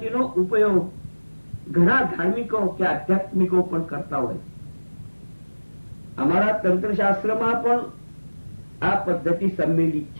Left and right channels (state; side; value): inverted; both; correlation -1.00